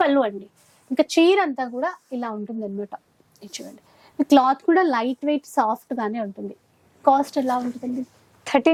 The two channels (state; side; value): identical; both; correlation 1.00